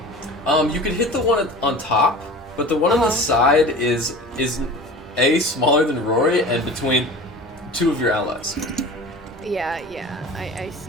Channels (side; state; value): both; normal; correlation 0.38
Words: You could hit the one on top, but the one on the side is A, smaller than Rory, and between 2 of your allies. Yeah, I